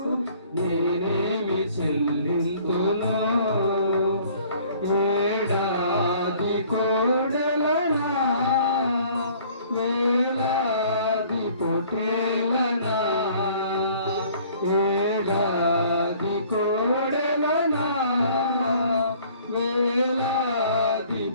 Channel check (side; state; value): both; inverted; correlation -0.55